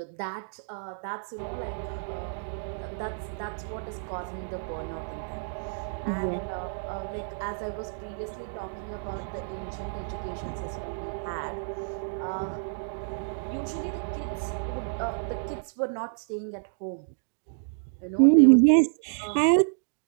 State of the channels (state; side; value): silent; left; digital silence